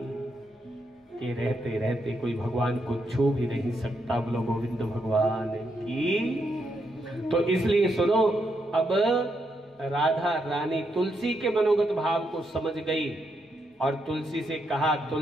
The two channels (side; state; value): both; normal; correlation 0.80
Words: के रहते रहते कोई भगवान को छू भी नहीं सकता। बोलो गोविंद भगवान की। तो इसलिए सुनो, अब राधा रानी तुलसी के मनोगत भाव को समझ गई और तुलसी से कहा,